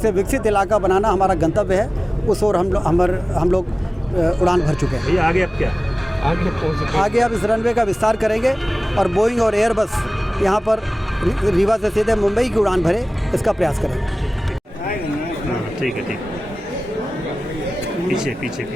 विकसित इलाका बनाना हमारा गंतव्य है, उस ओर हम लोग उड़ान भर चुके हैं। भैया आगे अब क्या? आगे अब इस रनवे का विस्तार करेंगे और बोइंग और एयरबस यहाँ पर रीवा से सीधे मुंबई की उड़ान भरे, इसका प्रयास करेंगे। ठीक है, ठीक। पीछे पीछे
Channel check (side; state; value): both; normal; correlation 0.98